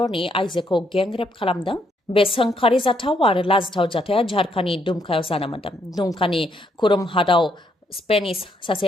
आइजोखौ गेंरेप खालामदों बे सोंखारि जाथाव आरो लाजिथाव जाथाया झारखान्डनि दुमकायाव जानो मोन्दों दुमकानि खुरुम हादाव स्पेनिश सासे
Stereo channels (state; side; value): normal; both; correlation 0.73